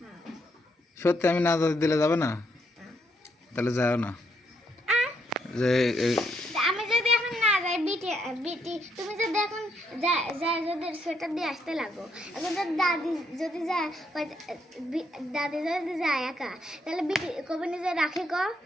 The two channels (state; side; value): normal; both; correlation 0.75